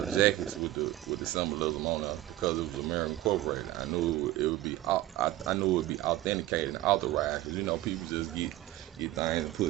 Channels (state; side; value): quieter; left; 15.8 dB